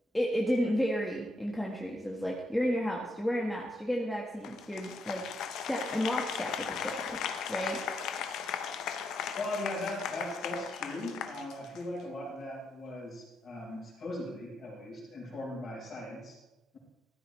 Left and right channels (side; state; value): both; normal; correlation 0.80